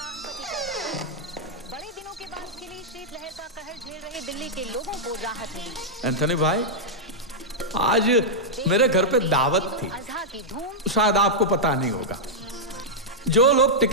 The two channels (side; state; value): both; normal; correlation -0.07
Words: अंक। बड़े दिनों के बाद खिली शीतलहर का कहर झेल रहे दिल्ली के लोगों को राहत मिली। एंथनी भाई, आज मेरे घर पे दावत थी, शायद आपको पता नहीं होगा। जो लोग